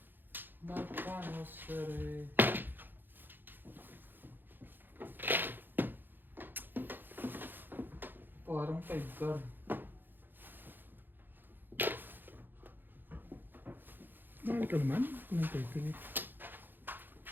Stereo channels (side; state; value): left; late; 0.093 ms